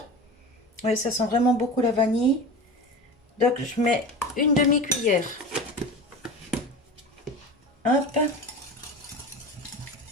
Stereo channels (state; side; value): normal; both; correlation 0.31